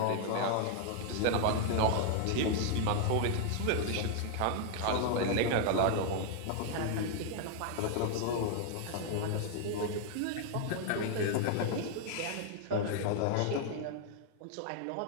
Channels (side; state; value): both; different; correlation 0.00